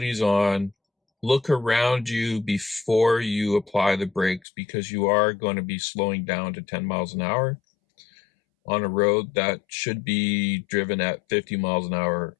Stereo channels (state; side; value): drops out; right; at 4.4 s